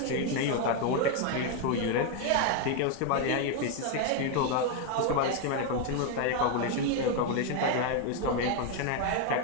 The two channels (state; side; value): different; both; correlation 0.01